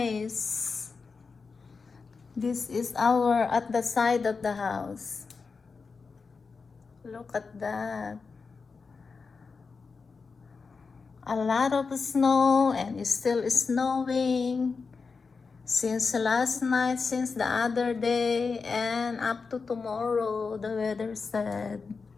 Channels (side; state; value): right; quieter; 4.8 dB